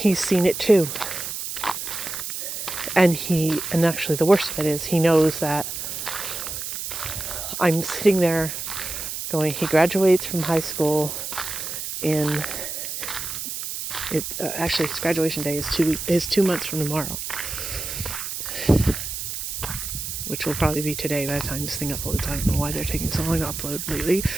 seen it too. And actually the worst of it is he knows that I'm sitting there going, he graduates from high school actually his graduation day is 2 months from tomorrow. Which will probably be today by the time this thing uploads. I don't know why they're taking so long to upload lately,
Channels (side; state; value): right; noise; hiss, 5 dB below the sound